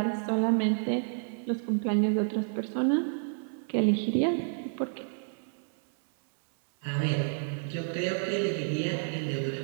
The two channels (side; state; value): left; silent; 58 dB below the other